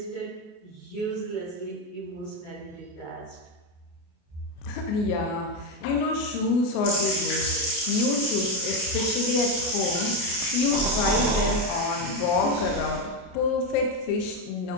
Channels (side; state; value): right; late; 28 ms